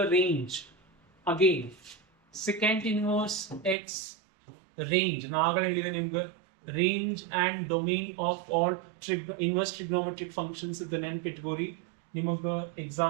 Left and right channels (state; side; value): drops out; left; at 3.8 s